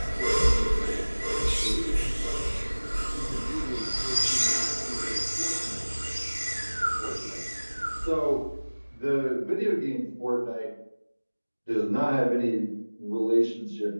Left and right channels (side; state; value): both; inverted; correlation -1.00